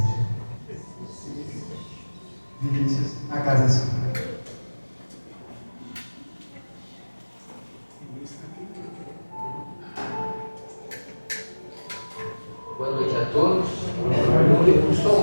Vinícius, a casa é sua. Boa noite a todos. O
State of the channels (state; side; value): inverted; both; correlation -1.00